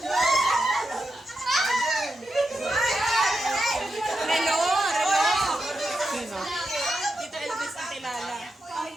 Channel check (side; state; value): both; normal; correlation 0.87